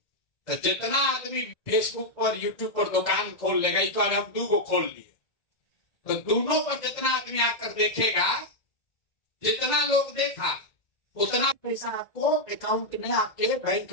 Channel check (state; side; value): late; right; 2.0 ms